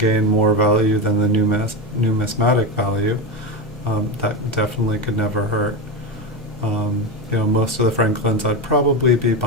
more value than the numismatic value. That definitely could never hurt. Most of the Franklins I'd probably be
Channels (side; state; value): both; normal; correlation 0.17